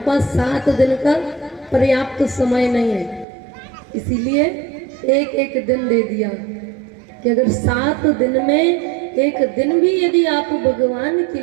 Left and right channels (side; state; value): left; drops out; at 3.2 s